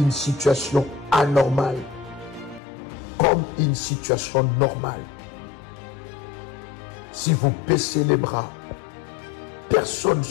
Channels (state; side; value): drops out; right; at 2.6 s